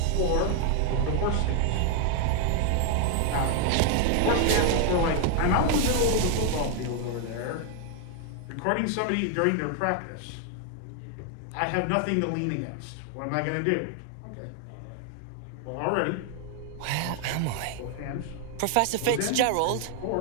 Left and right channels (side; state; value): both; different; correlation 0.00